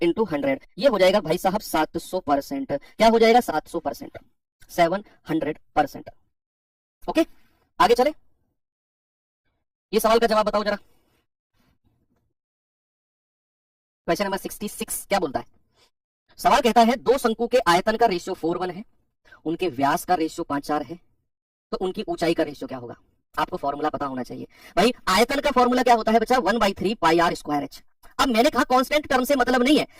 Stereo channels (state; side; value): identical; both; correlation 1.00